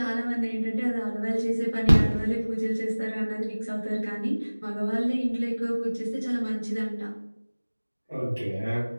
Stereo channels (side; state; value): both; inverted; correlation -1.00